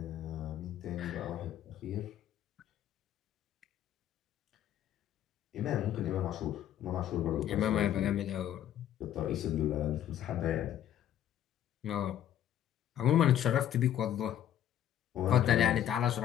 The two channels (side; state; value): right; quieter; 11.0 dB